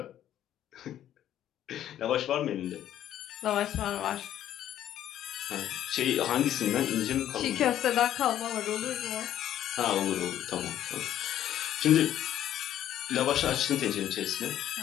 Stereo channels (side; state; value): right; quieter; 11.5 dB